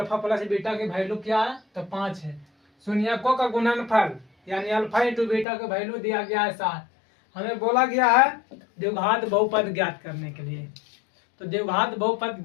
प्लस बीटा की वैल्यू क्या है तो 5 है। शून्यकों का गुणनफल यानी अल्फा इंटू बीटा का वैल्यू दिया गया है 7। हमें बोला गया है द्विघात बहुपद ज्ञात करने के लिए। तो द्विघात बहुपद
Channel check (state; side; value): drops out; right; at 5.5 s